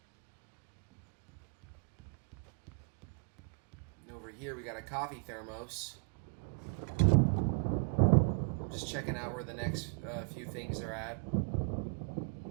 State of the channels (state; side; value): quieter; left; 38.1 dB